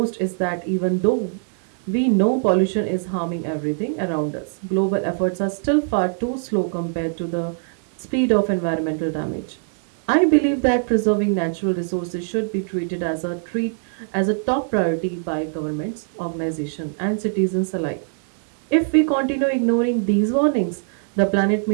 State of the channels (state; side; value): silent; left; digital silence